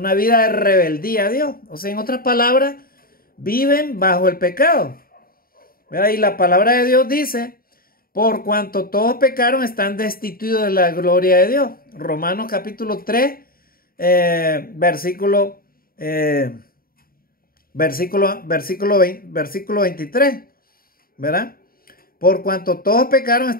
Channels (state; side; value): late; right; 0.43 ms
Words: vida de rebeldía a Dios. O sea, en otras palabras, viven bajo el pecado. ¿Verdad? Y la palabra de Dios dice: por cuanto todos pecaron, están destituidos de la gloria de Dios. Romanos capítulo 3, versículo 23, ¿verdad? Por cuanto todos pecaron,